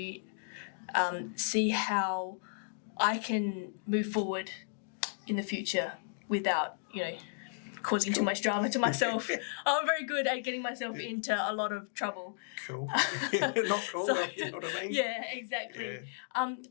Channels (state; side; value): silent; right; digital silence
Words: see how I can move forward in the future without, causing too much drama to myself. I'm very good at getting myself into a lot of trouble. Cool. Not cool, So- you know what I mean? Yeah, exactly.